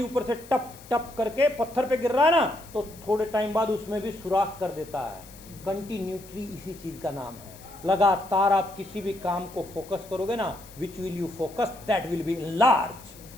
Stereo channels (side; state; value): left; noise; hiss, 21 dB below the sound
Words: ऊपर से टप टप करके पत्थर पे गिर रहा है ना, तो थोड़े टाइम बाद उसमें भी सुराख कर देता है। कंटिन्यूटी इसी चीज का नाम है। लगातार आप किसी भी काम को फोकस करोगे ना, which will you focus that will be large.